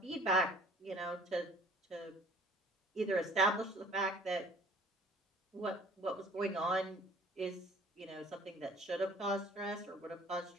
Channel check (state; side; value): normal; both; correlation 0.52